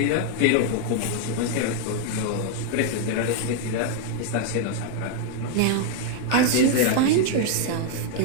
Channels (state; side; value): different; both; correlation 0.00